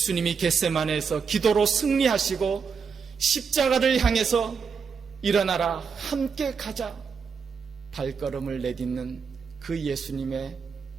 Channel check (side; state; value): left; quieter; 5.9 dB